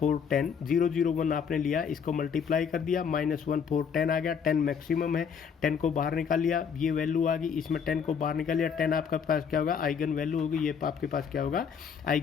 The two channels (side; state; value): right; quieter; 6.8 dB